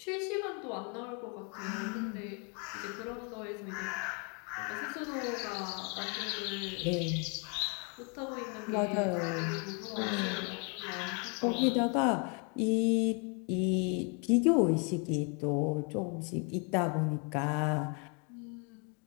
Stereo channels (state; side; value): quieter; right; 35.9 dB